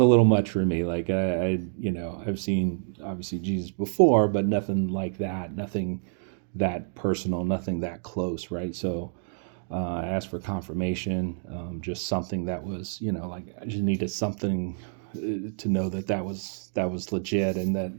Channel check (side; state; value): left; silent; digital silence